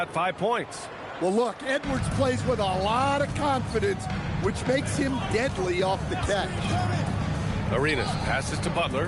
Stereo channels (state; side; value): identical; both; correlation 1.00